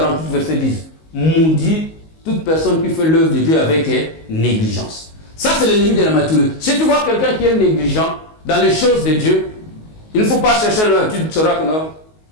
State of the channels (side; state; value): right; late; 19 ms